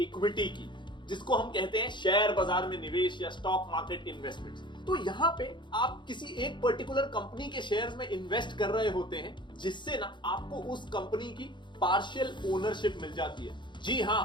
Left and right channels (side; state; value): right; late; 0.23 ms